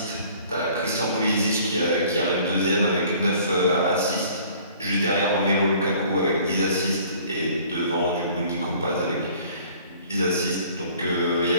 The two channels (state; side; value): inverted; both; correlation -0.53